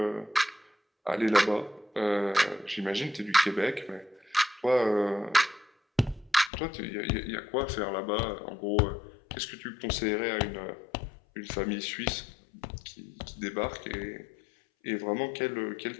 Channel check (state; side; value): drops out; right; at 6.5 s